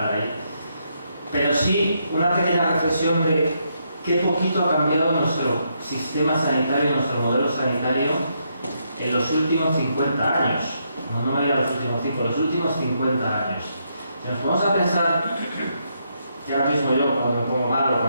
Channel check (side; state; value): both; inverted; correlation -0.78